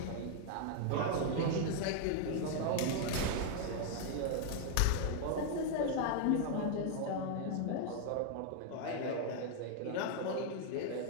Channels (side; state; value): both; different; correlation 0.00